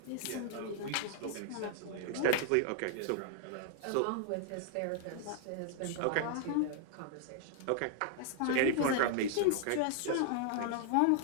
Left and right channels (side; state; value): both; different; correlation -0.01